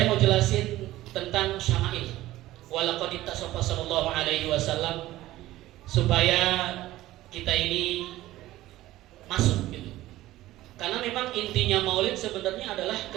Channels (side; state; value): left; quieter; 16.0 dB